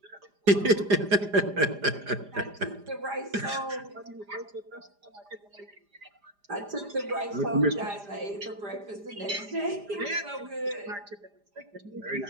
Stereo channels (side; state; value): left; late; 4.9 ms